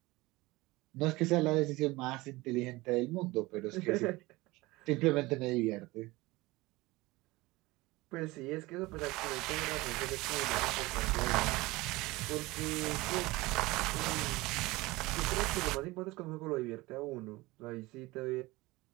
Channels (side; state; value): left; quieter; 21.0 dB